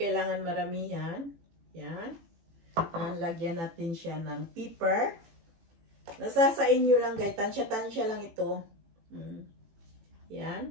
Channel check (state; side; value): late; left; 18 ms